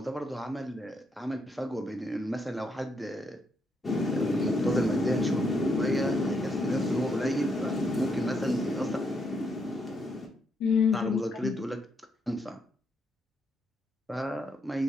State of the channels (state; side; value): normal; both; correlation 0.77